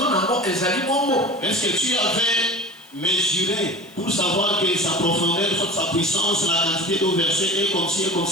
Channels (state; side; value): noise; left; hiss, 27 dB below the sound